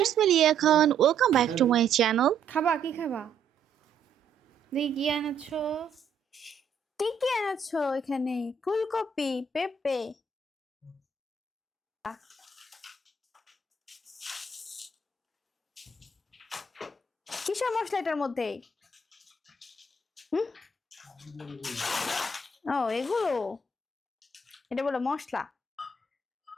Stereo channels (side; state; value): left; quieter; 4.3 dB